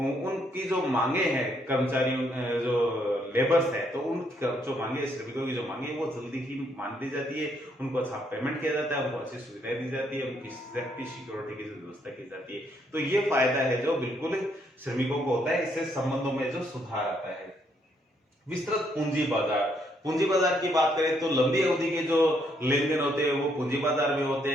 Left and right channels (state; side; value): normal; both; correlation 0.72